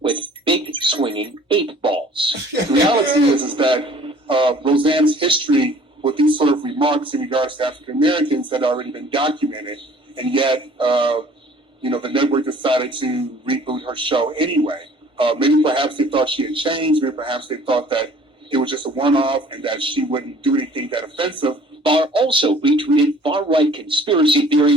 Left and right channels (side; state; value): both; normal; correlation 0.52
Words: with big swinging 8 balls. The reality is that Roseanne's history with these sort of remarks in regards to African-Americans had already been documented, and yet, the network decided to reboot her show anyway. Maybe perhaps they thought she had changed. Maybe perhaps they thought that it was just a one-off and that she wouldn't do anything that offensive. Barr also retweeted far-right conspiracy